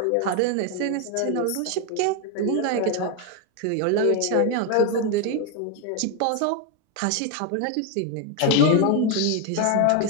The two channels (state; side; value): different; both; correlation 0.01